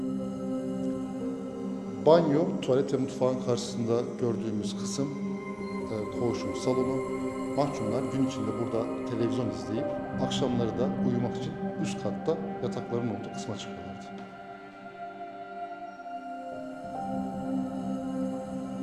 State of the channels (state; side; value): identical; both; correlation 1.00